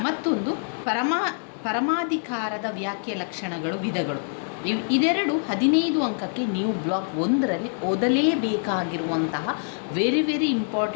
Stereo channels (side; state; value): right; silent; digital silence